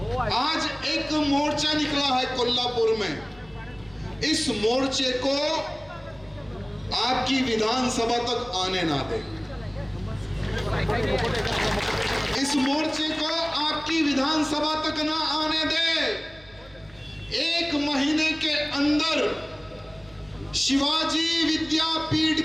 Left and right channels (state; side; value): noise; right; hum, 26 dB below the sound